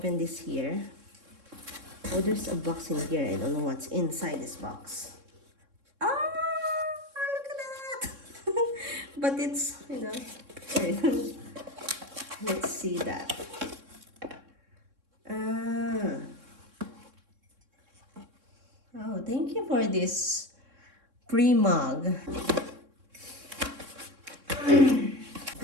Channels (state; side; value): late; left; 3.6 ms